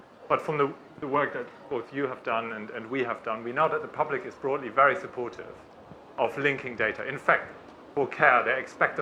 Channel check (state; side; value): identical; both; correlation 1.00